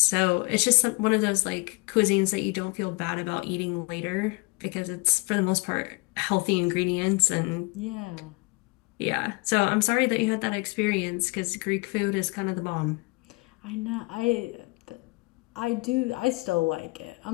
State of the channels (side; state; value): right; quieter; 27.0 dB